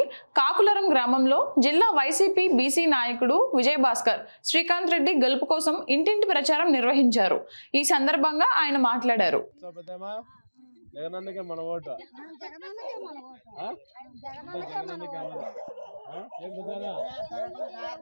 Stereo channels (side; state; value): both; inverted; correlation -1.00